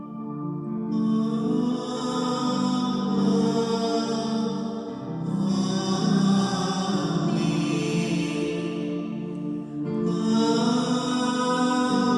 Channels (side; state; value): both; identical; correlation 1.00